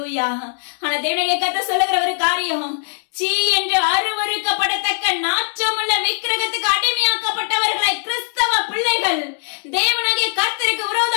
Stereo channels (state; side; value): silent; right; digital silence